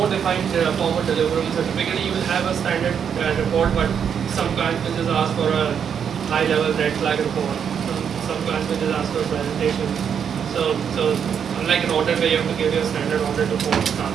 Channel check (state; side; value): quieter; left; 7.7 dB